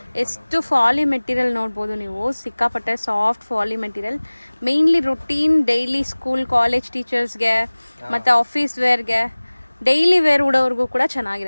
ಎಷ್ಟು ಫಾಲಿ ಮೆಟೀರಿಯಲ್ ನೋಡ್ಬೋದು ನೀವು. ಸಿಕ್ಕಾಪಟ್ಟೆ ಸಾಫ್ಟ್ ಫಾಲಿ material. Mainly routine daily school college ಟೀಚರ್ಸ್ಗೆ ಮತ್ತೆ ಆಫೀಸ್ ವೇರ್ಗೆ, ಡೈಲಿ ವೇರ್ ಉಡೋರ್ಗೂ ಕೂಡ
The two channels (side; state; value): both; inverted; correlation -1.00